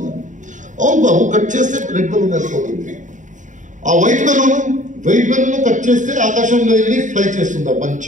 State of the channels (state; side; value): late; left; 0.36 ms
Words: అవును బాబు, కట్ చేస్తే రెడ్ బెలూన్ వెళ్ళిపోతుంది. ఆ వైట్ బెలూన్ కట్ చేస్తే ఆకాశంలో వెళ్ళి ఫ్లై చేస్తుందా